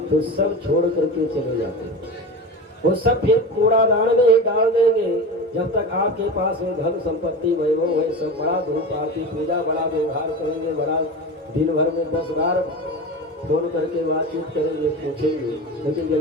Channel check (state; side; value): normal; both; correlation 0.27